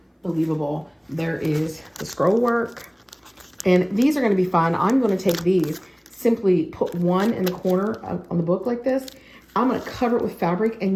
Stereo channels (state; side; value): identical; both; correlation 1.00